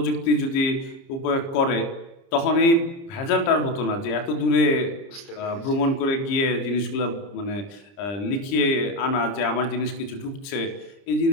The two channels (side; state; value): right; late; 29 ms